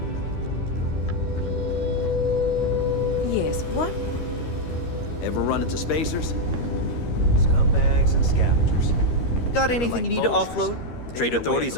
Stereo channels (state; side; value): late; right; 13 ms